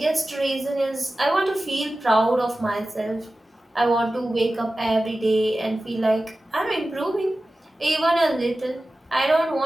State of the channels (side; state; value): both; normal; correlation 0.95